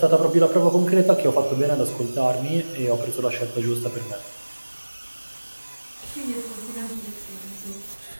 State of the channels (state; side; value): inverted; both; correlation -1.00